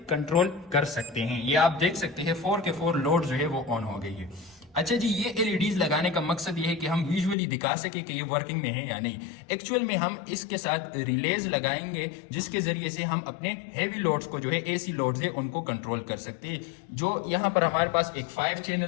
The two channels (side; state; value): right; drops out; at 7.4 s